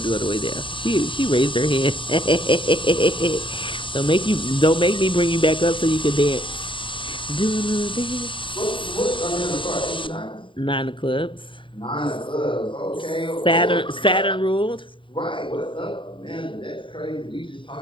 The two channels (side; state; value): right; late; 0.25 ms